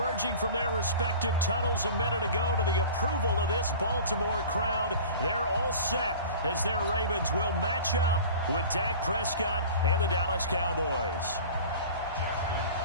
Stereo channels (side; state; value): both; inverted; correlation -0.40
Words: from their respective tunnels a minute ago to the approval of this Baltimore crowd. They're all set as their Ravens will match up with Dak Prescott and the Dallas Cowboys.